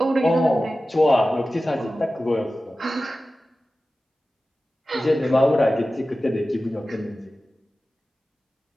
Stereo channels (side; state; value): both; normal; correlation 0.95